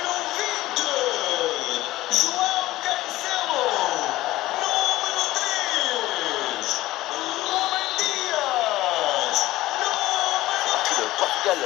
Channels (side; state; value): right; quieter; 16.8 dB